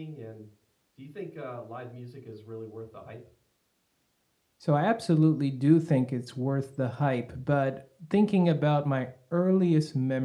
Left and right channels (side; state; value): both; identical; correlation 1.00